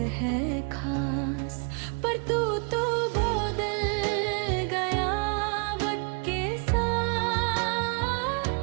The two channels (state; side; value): quieter; left; 35.9 dB